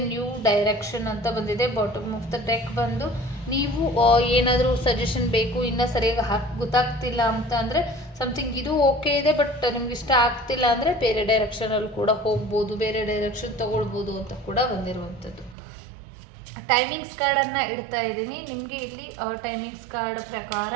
ನ್ಯೂ ಡೈರೆಕ್ಷನ್ ಅಂತ ಬಂದಿದೆ. ಬಾಟಮ್ ಆಫ್ ದ ಡೆಕ್ ಬಂದು ನೀವು ಏನಾದರೂ ಸಜೆಷನ್ ಬೇಕು, ಇನ್ನೂ ಸರಿಯಾಗಿ ಗೊತ್ತಾಗ್ತಿಲ್ಲ ಅಂತ ಅಂದರೆ ಸಮಥಿಂಗ್ ಇದು ಓಕೆ ಇದೆ, ಬಟ್ ನಿಮ್ಗೆ ಇಷ್ಟ ಆಗ್ತಿಲ್ಲ ಅಂದರೆ ಬೇರೆ ಡೈರೆಕ್ಷನಲ್ಲಿ ಕೂಡ ಹೋಗ್ಬೋದು, ಬೇರೆ ಡೈರೆಕ್ಷನ್ ತೊಗೊಳ್ಬೋದು ಅಂತ ಕೂಡ ಬಂದಿರುವಂಥದ್ದು. ಟೈಮಿಂಗ್ಸ್ ಕಾರ್ಡನ್ನು ಇಡ್ತಾ ಇದ್ದೀನಿ ನಿಮಗೆ. ಇಲ್ಲಿ ಟೈಮಿಂಗ್ಸ್ ಕಾರ್ಡ್ ಪ್ರಕಾರ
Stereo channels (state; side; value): drops out; left; at 15.6 s